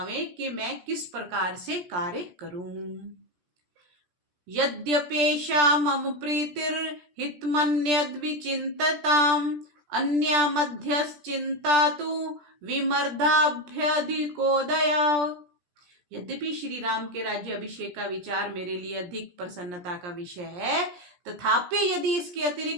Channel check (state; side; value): late; left; 17 ms